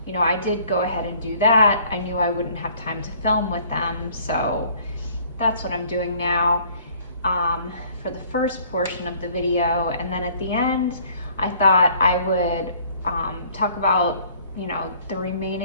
did go ahead and do that. I knew I wouldn't have time to film with them, so that's what I'm doing now for the first portion of the video. And then at the end, I thought I would talk about the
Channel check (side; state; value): both; inverted; correlation -0.56